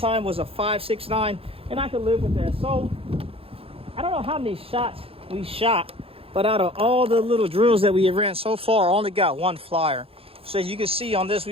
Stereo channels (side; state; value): left; late; 0.27 ms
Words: was a 5.69, and I could live with that. So I don't know how many shots we shot, but out of all the little drills that we have ran so far, I only got 1 flyer. So as you can see on this,